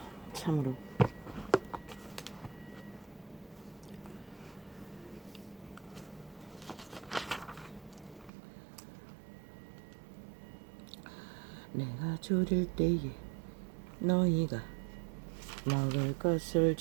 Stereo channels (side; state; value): left; drops out; at 8.3 s